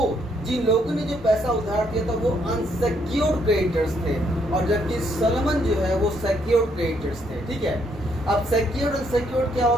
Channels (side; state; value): both; normal; correlation 0.72